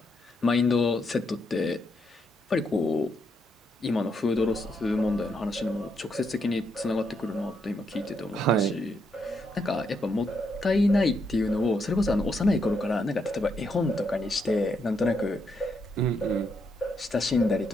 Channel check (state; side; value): normal; both; correlation 0.78